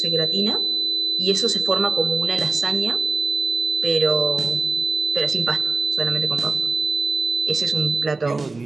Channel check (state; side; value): quieter; left; 3.6 dB